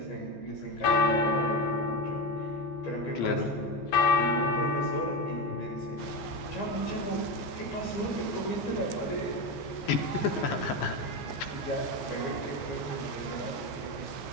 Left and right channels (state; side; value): late; right; 15 ms